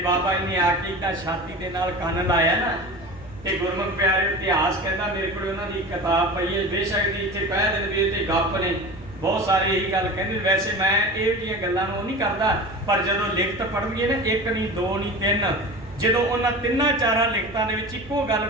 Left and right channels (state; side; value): noise; right; hum, 22 dB below the sound